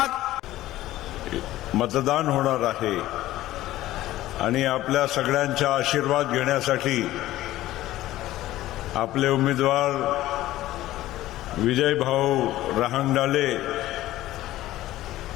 मतदान होणार आहे आणि आपल्या सगळ्यांचा आशीर्वाद घेण्यासाठी आपले उमेदवार विजय भाऊ रहांगडाले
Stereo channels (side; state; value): right; quieter; 15.3 dB